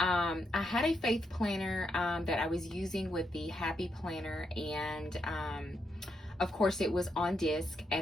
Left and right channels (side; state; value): both; normal; correlation 0.81